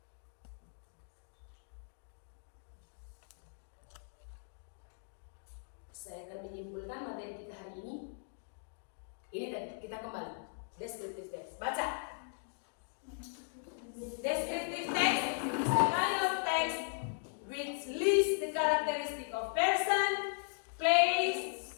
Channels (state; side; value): silent; right; digital silence